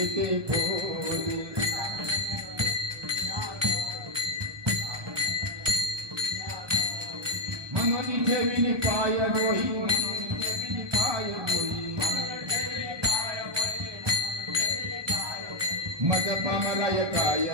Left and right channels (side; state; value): left; late; 1.2 ms